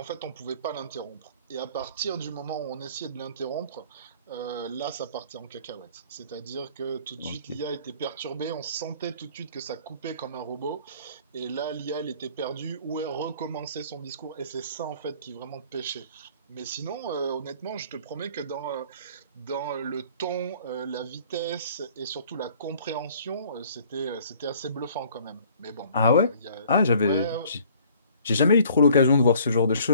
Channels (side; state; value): both; inverted; correlation -0.55